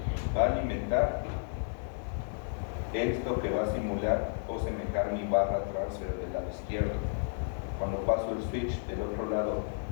va a alimentar esto que va a simular o semejar mi barra transfer del lado izquierdo. Cuando paso el switch del otro lado,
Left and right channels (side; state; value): right; silent; 56 dB below the other